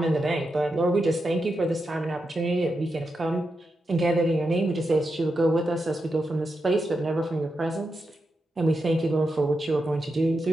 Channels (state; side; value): normal; both; correlation 0.87